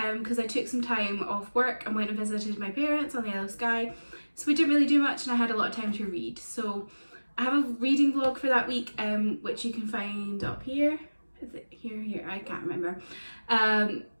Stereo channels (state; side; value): inverted; both; correlation -1.00